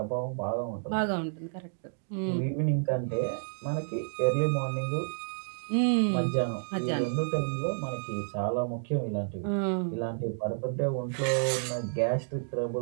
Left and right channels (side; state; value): left; silent; digital silence